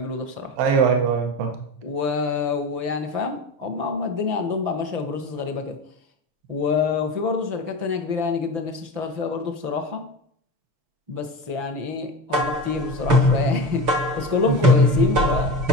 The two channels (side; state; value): left; late; 6.0 ms